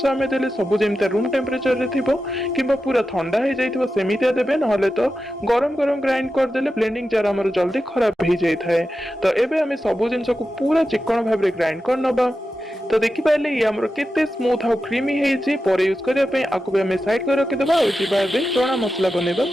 आम देले सब जमी रूम टेम्परेचर रे थिबो किंबा पूरा ठंडा हो जाइथिबो सेमितिया देबे नहले तो गरम गरम ग्राइंड कर देले ब्लेंडिंग जार हमर जल्दी खराब हो जाय थाए। तो एबे हमें सब जिनस को पूरा चिकन भाव रे ग्राइंड कर नबा। तो देखि पाइले ये हमर केते स्मूथ और क्रीमी हे छी पर यूज करिया पे आकु भी हमें साइड कर रखि देबा और जिबा बे चना मसला बनेबा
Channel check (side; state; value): both; normal; correlation 0.91